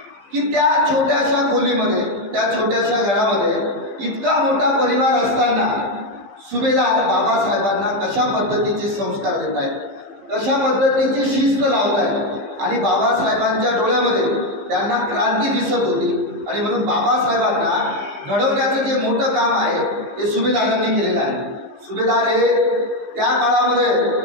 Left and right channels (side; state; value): left; late; 15 ms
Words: की त्या छोट्याशा खोलीमध्ये, त्या छोट्याशा घरामध्ये इतका मोठा परिवार असताना सुभेदार बाबासाहेबांना कशा पद्धतीचे संस्कार देत आहेत, कशा पद्धतीची शिस्त लावत आहेत. आणि बाबासाहेबांच्या डोळ्यामध्ये त्यांना क्रांती दिसत होती. आणि म्हणून बाबासाहेबांना घडवण्याचं जे मोठं काम आहे ते सुभेदारांनी केलेलं आहे. सुभेदार हे त्या काळामध्ये